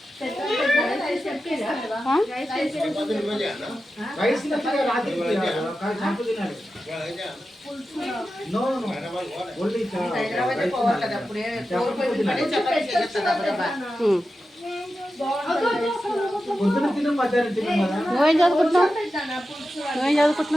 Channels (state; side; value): normal; both; correlation 0.92